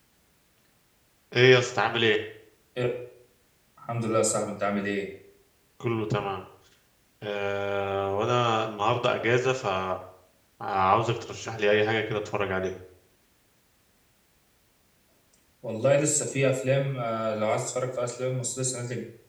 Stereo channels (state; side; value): identical; both; correlation 1.00